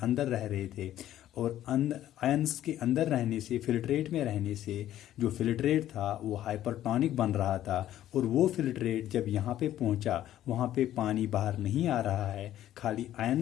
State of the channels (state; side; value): quieter; right; 12.6 dB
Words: अंदर रह रहे थे, और आयंस के अंदर रहने से, फिल्ट्रेट में रहने से जो फिल्ट्रेट था वो हाइपरटोनिक बन रहा था। और वो फिल्ट्रेट जब यहाँ पे पहुँचा, वहाँ पे पानी बाहर नहीं आ रहा है, खाली